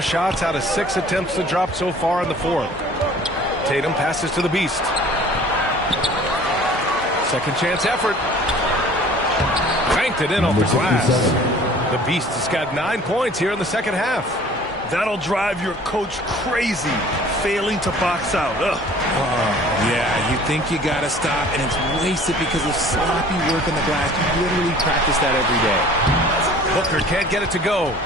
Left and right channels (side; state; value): both; normal; correlation 0.49